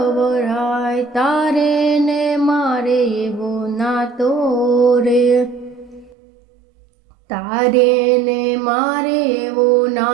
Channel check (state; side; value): drops out; left; at 6.1 s